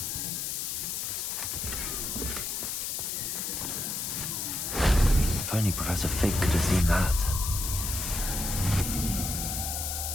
If only Professor Fig could have seen that.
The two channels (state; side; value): noise; left; hiss, 2 dB below the sound